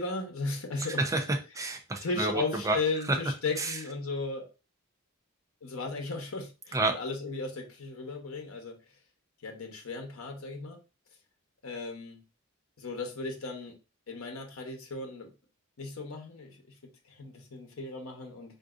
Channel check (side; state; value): both; normal; correlation 0.11